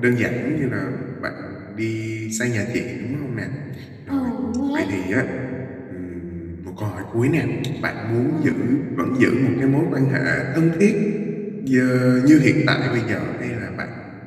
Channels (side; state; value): both; identical; correlation 1.00